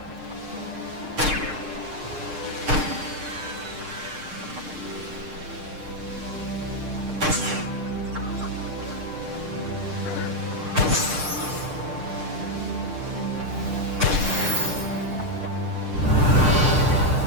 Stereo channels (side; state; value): left; late; 6.6 ms